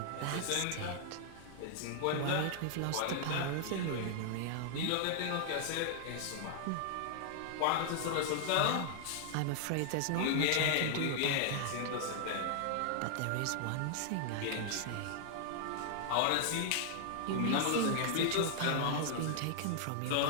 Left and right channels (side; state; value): both; different; correlation -0.01